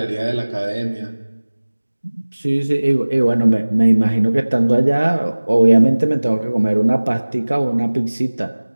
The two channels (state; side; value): inverted; both; correlation -1.00